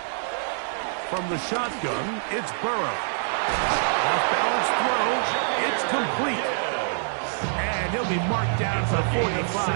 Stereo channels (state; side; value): silent; left; digital silence